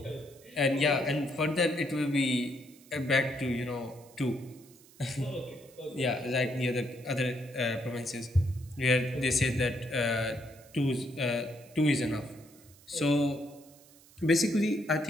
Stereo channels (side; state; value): right; noise; hiss, 25 dB below the sound